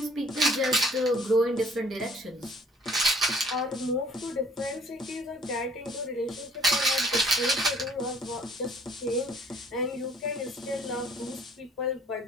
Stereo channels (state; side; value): normal; both; correlation 0.58